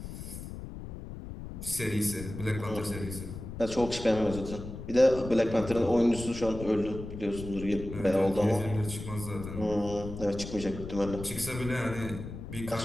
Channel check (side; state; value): left; noise; rumble, 10 dB below the sound